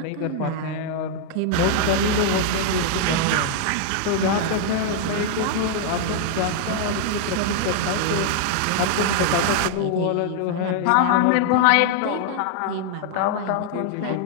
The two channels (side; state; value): both; different; correlation 0.00